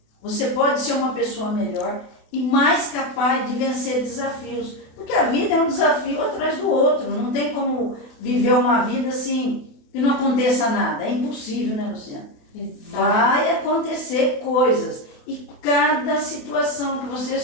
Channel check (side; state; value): right; late; 28 ms